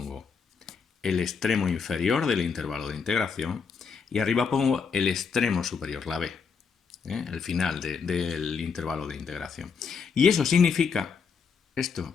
el extremo inferior del intervalo de integración y arriba pongo el extremo superior, la b, el final del intervalo de integración. Y eso significa,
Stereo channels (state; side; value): quieter; right; 5.8 dB